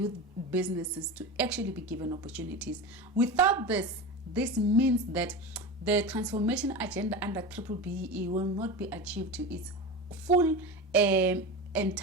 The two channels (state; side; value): normal; both; correlation 0.26